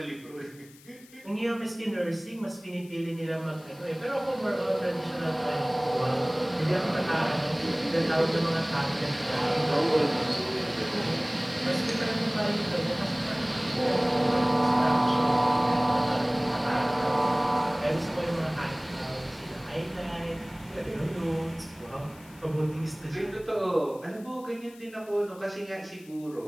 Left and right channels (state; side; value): noise; left; hiss, 24 dB below the sound